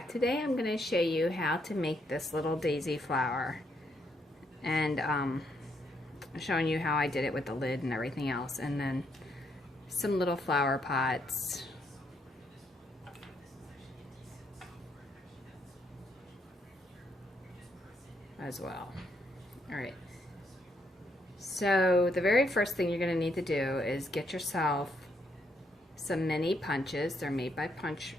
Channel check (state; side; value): normal; both; correlation 0.75